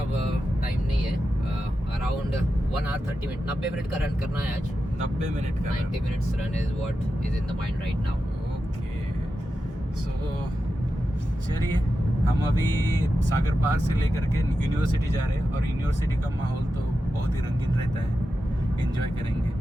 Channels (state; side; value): normal; both; correlation 0.90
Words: टाइम नहीं है. अराउंड 1 hour 30 minutes, 90 मिनट का रन करना है आज. 90 मिनट का. 90 minutes run is what is in the mind right now. Okay, so चलिए हम अभी सागर पार्क से लेकर के यूनिवर्सिटी जा रहे हैं. और यूनिवर्सिटी का माहौल तो बहुत ही रंगीन रहता है, एंजॉय करेंगे.